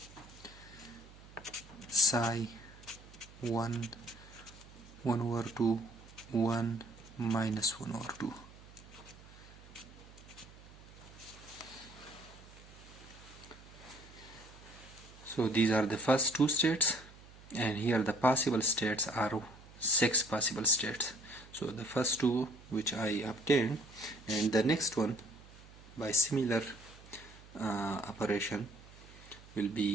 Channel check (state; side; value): noise; right; hum, 20 dB below the sound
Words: psi 1 over 2 1 minus 1 over 2. So these are the first two states, and here the possible states are 6 possible states. So the first two which I obtained, and the next one by similar operation will